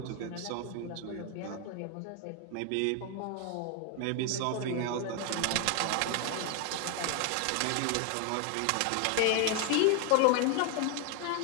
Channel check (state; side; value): different; both; correlation 0.01